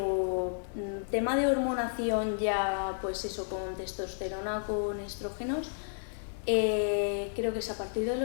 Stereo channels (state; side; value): silent; right; 55 dB below the other